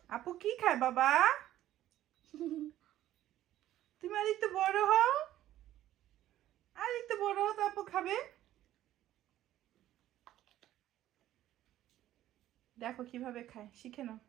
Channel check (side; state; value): left; quieter; 13.4 dB